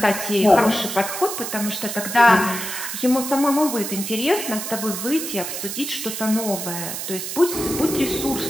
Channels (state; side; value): noise; right; hiss, 5 dB below the sound